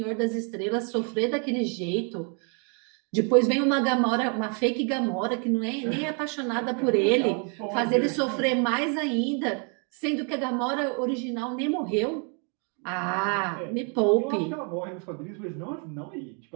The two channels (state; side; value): quieter; left; 39.3 dB